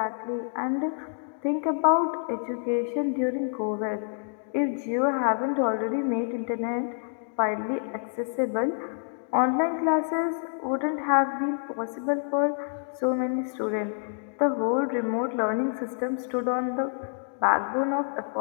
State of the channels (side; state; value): right; silent; digital silence